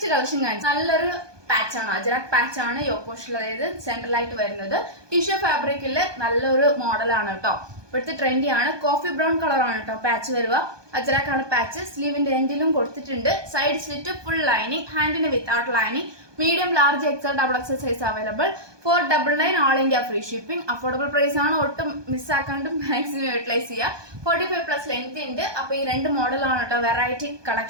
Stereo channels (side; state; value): left; late; 1.2 ms